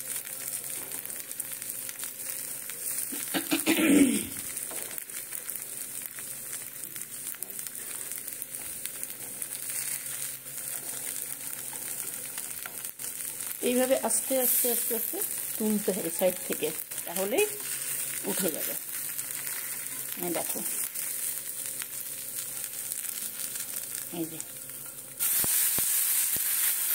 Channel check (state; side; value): identical; both; correlation 1.00